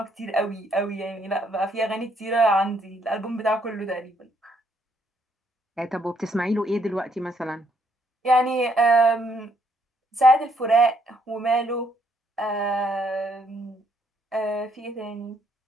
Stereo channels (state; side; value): normal; both; correlation 0.71